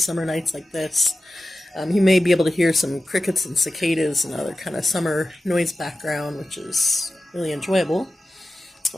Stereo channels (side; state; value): both; normal; correlation 0.94